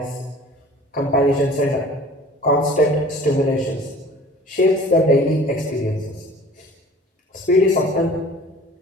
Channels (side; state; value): both; normal; correlation 0.46